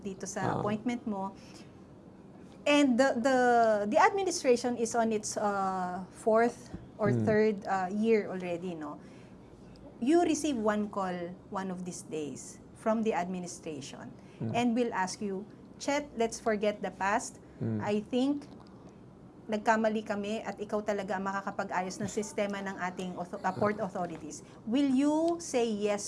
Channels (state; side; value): identical; both; correlation 1.00